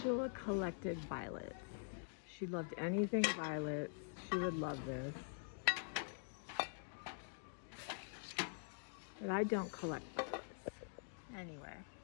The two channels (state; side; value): silent; right; digital silence